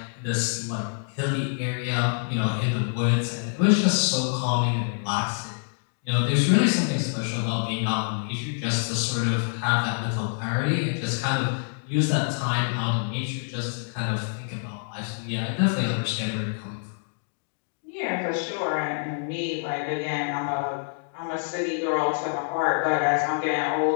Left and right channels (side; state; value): right; silent; digital silence